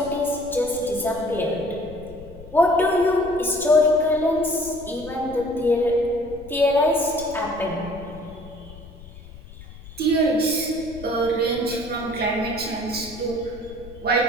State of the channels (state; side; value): noise; left; rumble, 17 dB below the sound